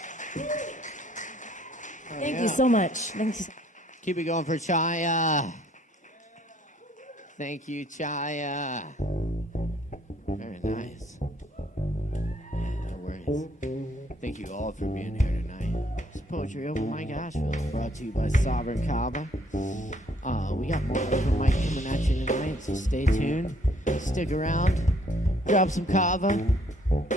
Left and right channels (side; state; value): both; normal; correlation 0.63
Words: Thank you so much. Thank you. Keep it going for Chaya. Thank you, Chaya. Very nice. Yeah, no worries. Thank you all for being here tonight. It's Poetry Open Mic Asheville, brought to you by Sovereign Kava. We got more open mic coming at you tonight, so stay tuned. Stick around. Grab some Kava.